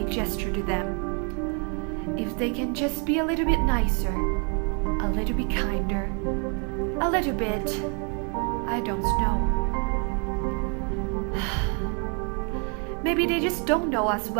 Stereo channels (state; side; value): quieter; left; 38.5 dB